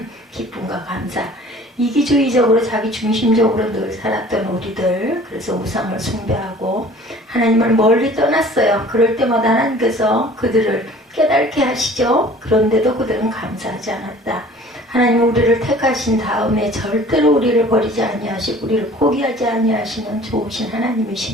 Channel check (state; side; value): normal; both; correlation 0.49